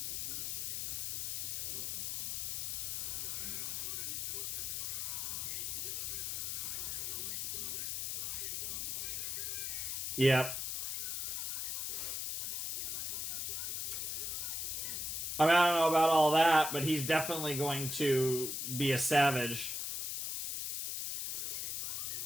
Yep. I mean, I don't know about all that, but he's definitely going to be a savage.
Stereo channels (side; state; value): left; noise; hiss, 1 dB below the sound